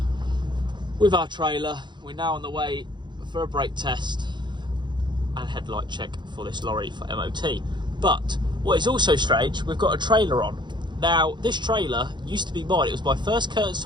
with our trailer. We're now on the way for a brake test and headlight check for this lorry for MOT. But what is also strange, we've got a trailer on. Now, this trailer used to be mine. It was my first curtain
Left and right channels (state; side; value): late; left; 0.22 ms